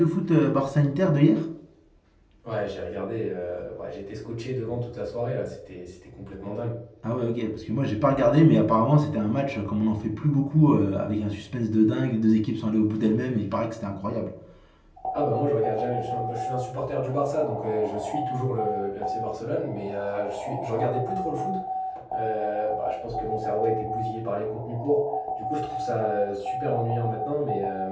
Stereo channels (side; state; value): both; identical; correlation 1.00